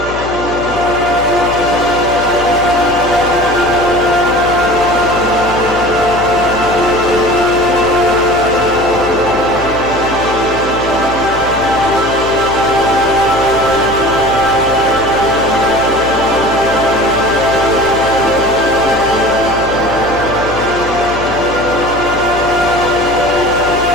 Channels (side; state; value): left; noise; hum, 12 dB below the sound